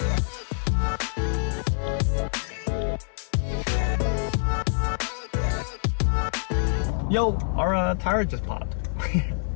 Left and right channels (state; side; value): silent; right; 61 dB below the other